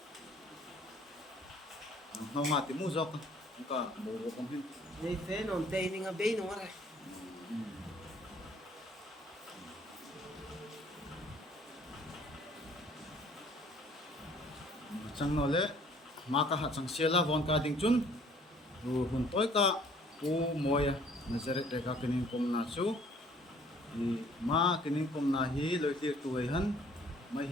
no ma ti mu zok ka borok kom hin Ni fe non te ni nga be no ra. chang no le ma ka ha chang sela von ka ding chun ru hun toy ka pu Mawia Nazareth reka kinin kom na chu i ma kinin kom na hi loi tir tu ai han mai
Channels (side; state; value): both; normal; correlation 0.57